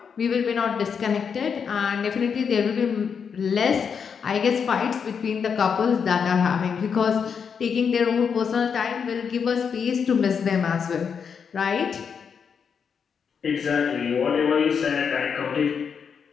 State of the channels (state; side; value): quieter; right; 6.6 dB